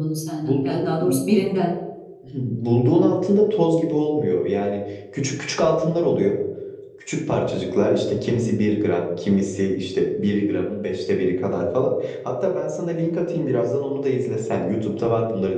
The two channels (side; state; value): both; identical; correlation 1.00